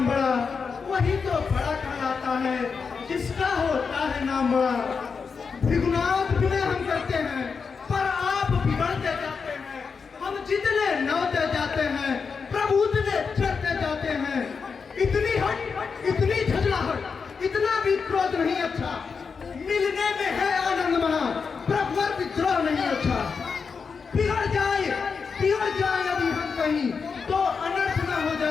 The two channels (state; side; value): quieter; right; 5.5 dB